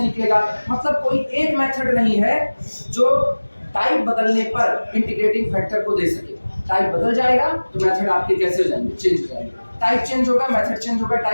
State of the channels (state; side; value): inverted; both; correlation -1.00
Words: निकलेगा। मतलब कोई एक मेथड नहीं है जो टाइप बदलने पर इंटीग्रेटिंग फैक्टर को दे सके। टाइप बदल जाएगा तो मेथड आपके कैसे हो जाएंगे, चेंज हो जाएंगे, टाइप चेंज होगा मेथड चेंज होगा,